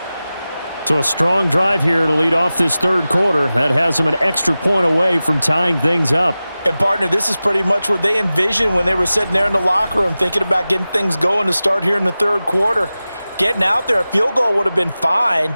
So a strong drive here to lead off this 3rd quarter. That has them an extra point away from tying things up. And, partner, this is pretty much what they envisioned when they were sitting there in the locker room thinking about getting things going to start here in the 3rd quarter. Getting out there, a field goal would have been fine.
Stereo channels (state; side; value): inverted; both; correlation -0.96